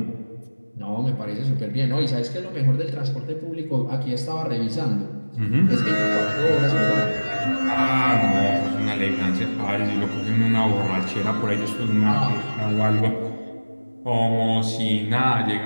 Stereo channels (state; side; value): inverted; both; correlation -1.00